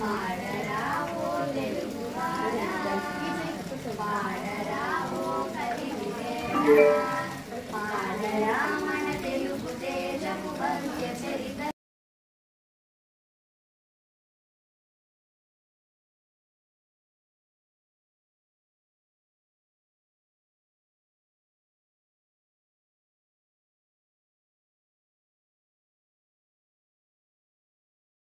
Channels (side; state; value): both; identical; correlation 1.00